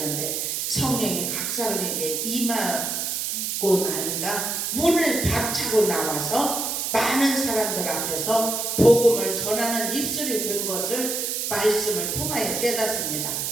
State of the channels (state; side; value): noise; right; hiss, 1 dB below the sound